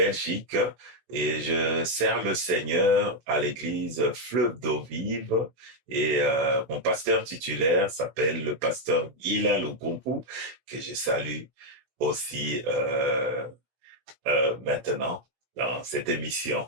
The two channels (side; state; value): left; late; 16 ms